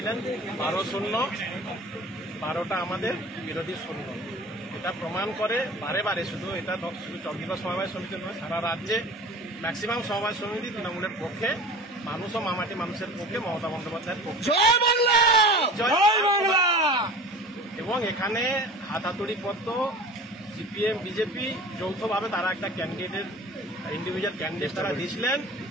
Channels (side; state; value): both; normal; correlation 0.38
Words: 12-0, 12টা আমাদের বিরোধী 0। এটা প্রমাণ করে বারে বারে, শুধু চন্দ্রিমা সমবায় সমিতি নয়, সারা রাজ্যে ম্যাক্সিমাম সমবায় সমিতি তৃণমূলের পক্ষে, মানুষ ও মামাটি মানুষের পক্ষে, মমতা বন্দ্যোপাধ্যায়ের পক্ষে। জয় বাংলা, জয় বাংলা। এবং এখানে হাতাতড়ি পত্র সিপিএম বিজেপি যৌথভাবে তারা একটা ক্যান্ডিডেটের ইন্ডিভিজুয়াল ক্যান্ডিডেট তারা দিয়েছিলেন,